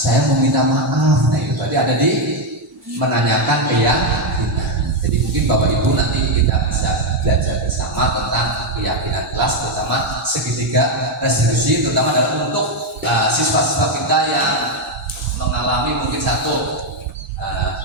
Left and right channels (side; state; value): both; normal; correlation 0.04